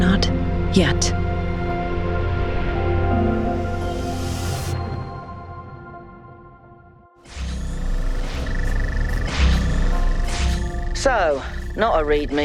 yet. So, not a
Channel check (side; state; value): both; identical; correlation 1.00